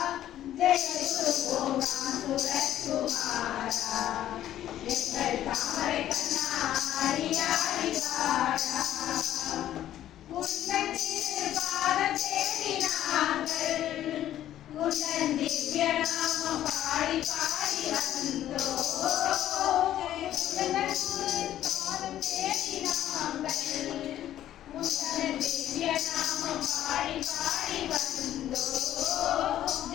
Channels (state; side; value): quieter; right; 12.2 dB